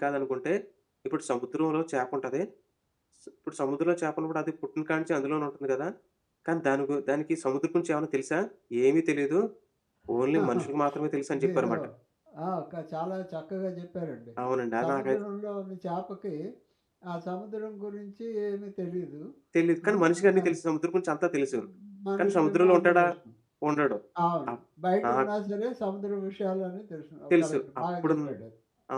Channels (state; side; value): identical; both; correlation 1.00